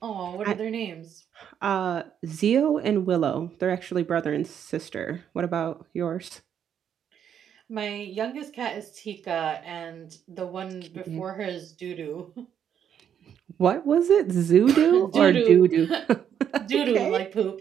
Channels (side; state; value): left; quieter; 8.8 dB